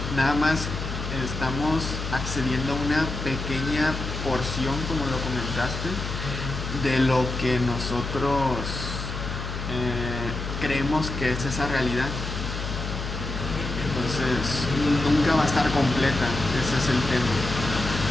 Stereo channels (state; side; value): noise; left; hum, 5 dB below the sound